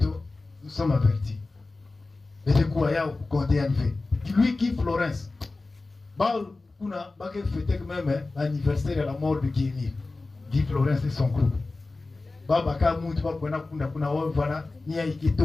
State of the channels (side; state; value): right; quieter; 3.4 dB